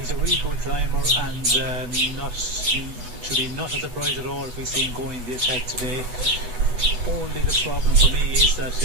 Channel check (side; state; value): left; late; 8.0 ms